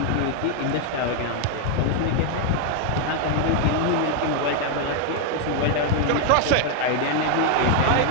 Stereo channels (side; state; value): both; different; correlation 0.00